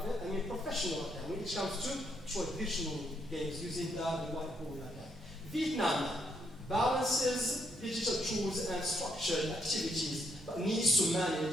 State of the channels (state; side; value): normal; both; correlation 0.75